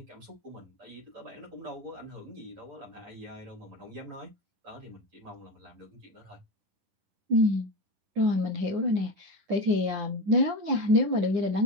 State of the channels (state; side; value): late; left; 10 ms